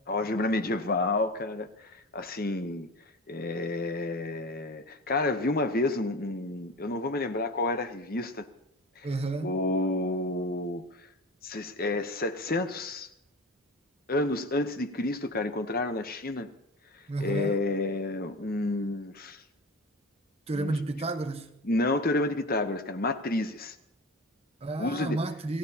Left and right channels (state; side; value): normal; both; correlation 0.31